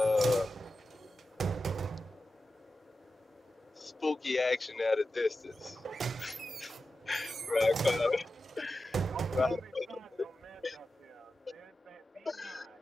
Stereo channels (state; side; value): normal; both; correlation 0.92